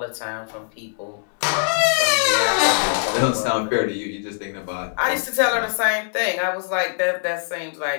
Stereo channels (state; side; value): silent; right; 63 dB below the other